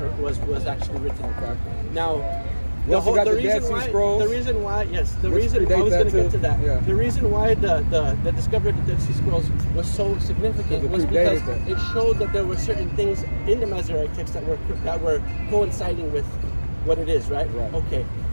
was actually written. Okay. Now, The reason why the discovery of the Dead Sea Scrolls was so significant was because it showed that there were certain things in the Masoretic text that were coinciding with what it is, right? Okay.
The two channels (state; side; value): inverted; both; correlation -1.00